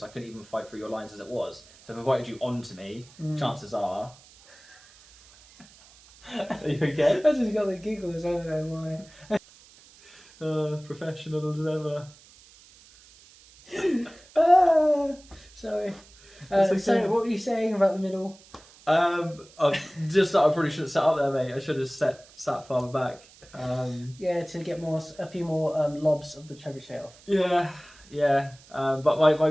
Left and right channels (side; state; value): right; noise; hiss, 25 dB below the sound